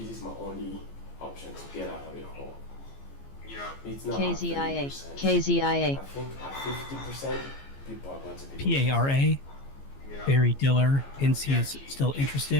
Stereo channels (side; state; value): right; late; 15 ms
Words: my only option to get out of the hole. Yeah. It's not KZIA. at 30%. KZIA. I think at 50%, people are going to be PARA. Yeah. Barry Diller hints he is still